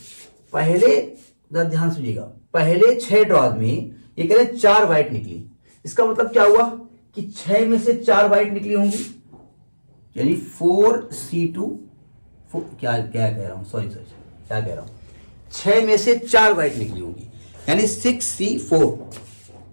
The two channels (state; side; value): inverted; both; correlation -1.00